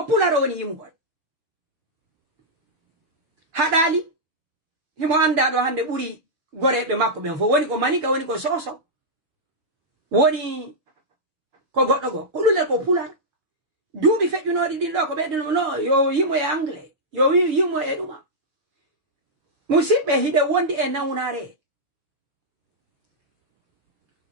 pularo woni yimugol hadali himo anda do hande buri gorebe makko ben fo woni ko manika woni ko soso woni ko goddo go ko lule ko pular duubi fejjunodi din do ko beddo no yo yimo e anglais yo yimo e duma musibbe hide wondi e nawnare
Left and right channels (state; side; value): late; left; 6.6 ms